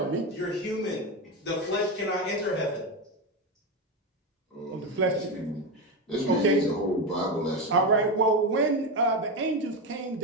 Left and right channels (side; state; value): both; normal; correlation 0.14